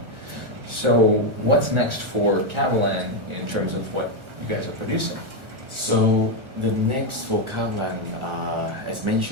So what's next for Kavalan in terms of what you guys are producing? So the next for Catalan, as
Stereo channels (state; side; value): late; left; 1.4 ms